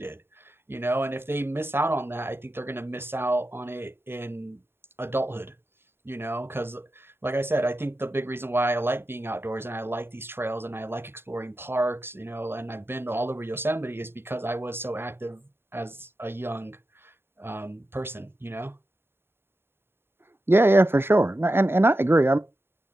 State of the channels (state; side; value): late; left; 0.11 ms